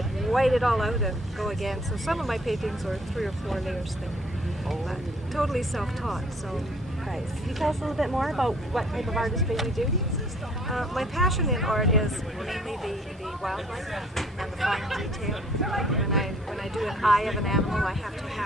white it all out and go again. So some of my paintings are 3 or 4 layers thick, but totally self-taught. So Nice. Can you tell us a little bit more about what type of artistry you do? my passion in art is mainly the wildlife and the fine detail. When I do an eye of an animal, I have to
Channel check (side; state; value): both; normal; correlation 0.58